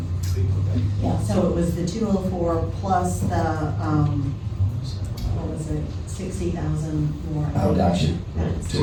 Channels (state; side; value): identical; both; correlation 1.00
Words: yeah, so it was the 204 plus the, what was it, 60,000 more. Oh, gotcha, That's- to